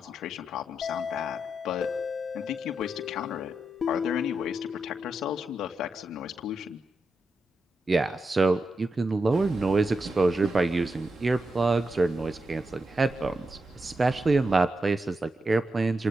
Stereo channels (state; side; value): normal; both; correlation 0.86